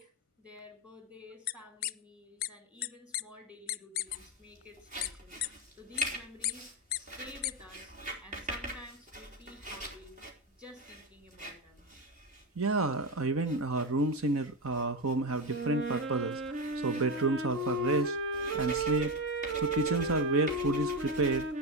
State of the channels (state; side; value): normal; both; correlation 0.14